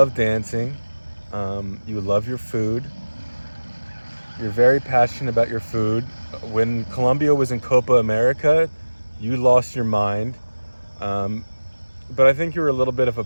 dancing. You love your food. You're very passionate about your food. When Colombia was in Copa America, you lost your mind. Um, but I think you were a little bit of a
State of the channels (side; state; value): both; inverted; correlation -1.00